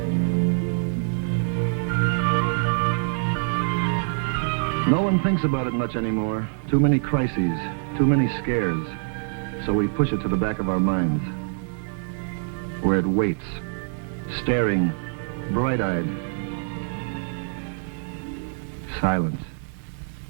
No one thinks about it much anymore. Too many crises, too many scares. So we push it to the back of our minds, where it waits, staring, bright-eyed, silent,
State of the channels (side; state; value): left; silent; digital silence